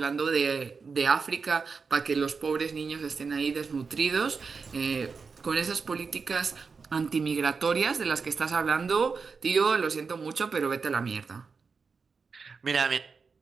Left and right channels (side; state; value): left; quieter; 5.1 dB